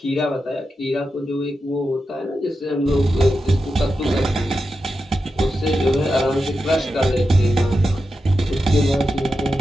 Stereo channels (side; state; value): both; normal; correlation 0.89